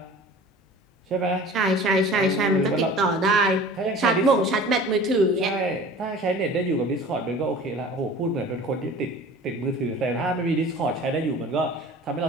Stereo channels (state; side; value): normal; both; correlation 0.43